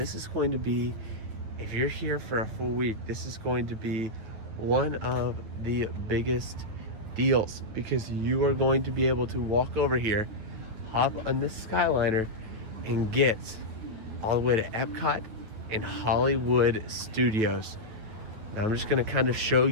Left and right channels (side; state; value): left; late; 9.6 ms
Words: is going to be, if you're here for a full week, this is going to be one of the biggest deals, because you are going to be able to walk over here, hop on this Skyliner, and get all the way to Epcot and Hollywood Studios. Now I'm just gonna kind of show